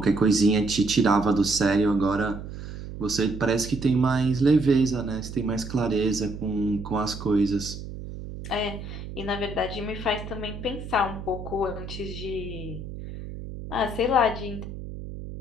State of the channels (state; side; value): noise; right; hum, 10 dB below the sound